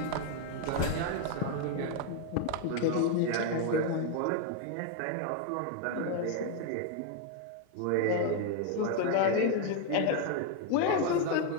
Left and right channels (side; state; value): both; different; correlation 0.01